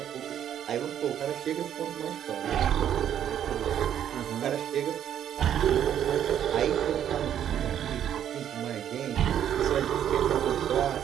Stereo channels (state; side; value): quieter; left; 10.0 dB